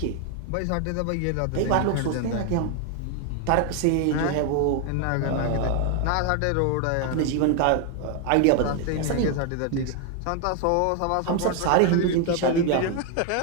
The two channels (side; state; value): both; different; correlation 0.01